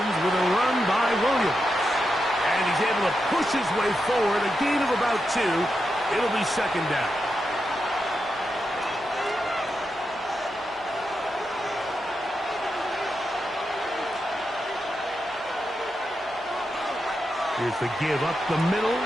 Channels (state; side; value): noise; right; hum, 27 dB below the sound